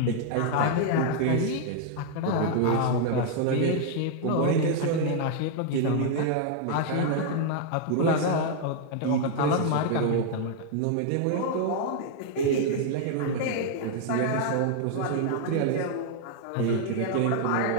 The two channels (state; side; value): different; both; correlation 0.00